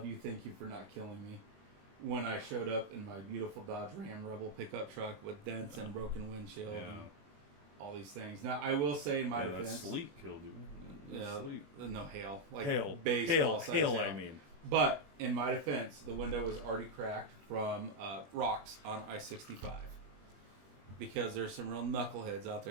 you. Thank you for not killing me. When I showed up in my beautiful Dodge Ram Rebel pickup truck with dents and broken windshield and all these things. Now, I will say in my defense... That sleep killed you. No, hail. Hail. Baseball hail, I mean. But, in my defense, the window was already cracked from rocks on I-65. Because there's some real knuckleheads out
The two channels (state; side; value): late; left; 21 ms